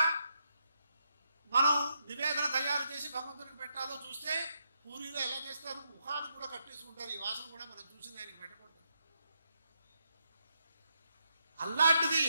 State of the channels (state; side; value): inverted; both; correlation -0.80